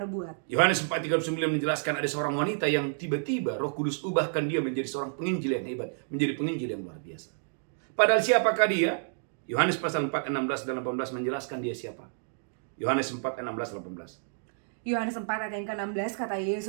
Yohanes 4:39 menjelaskan ada seorang wanita yang tiba-tiba Roh Kudus ubahkan dia menjadi seorang penginjil yang hebat, menjadi penginjil yang luar biasa. Padahal siapakah dia? Yohanes pasal 4 16 dan 18 menjelaskan dia siapa. Yohanes 4 16 18. Yohanes 4 ayat yang ke-16 kata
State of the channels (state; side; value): silent; left; digital silence